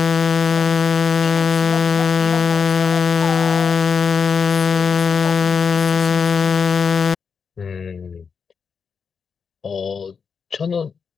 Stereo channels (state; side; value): quieter; right; 6.0 dB